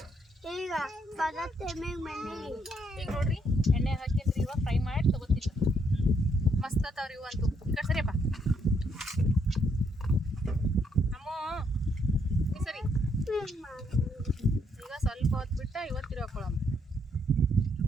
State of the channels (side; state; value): both; normal; correlation 0.73